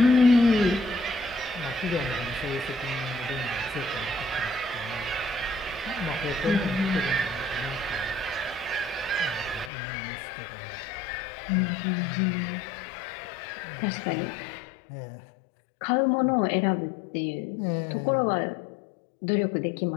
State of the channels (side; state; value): right; drops out; at 9.7 s